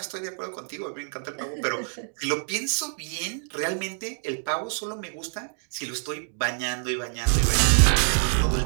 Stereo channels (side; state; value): left; silent; 55 dB below the other